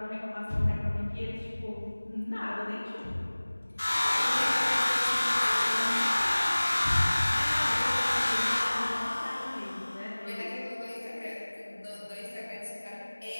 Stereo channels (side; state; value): both; inverted; correlation -1.00